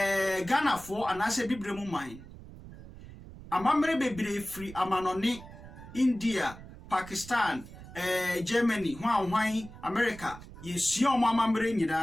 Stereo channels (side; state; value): right; noise; rumble, 16 dB below the sound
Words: for anase bibre mu man. Amamre bebre free amanone India, Pakistan, Germany, hwan America. Yesua omo amamre